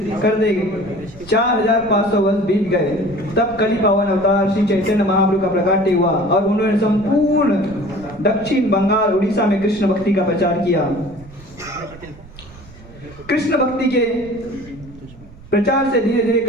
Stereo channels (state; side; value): noise; right; rumble, 20 dB below the sound